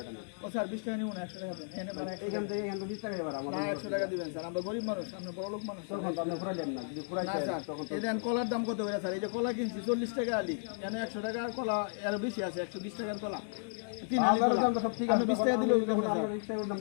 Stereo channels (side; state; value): right; silent; digital silence